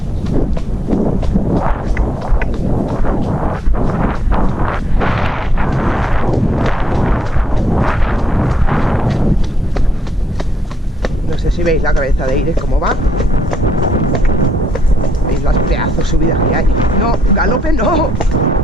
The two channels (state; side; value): normal; both; correlation 0.78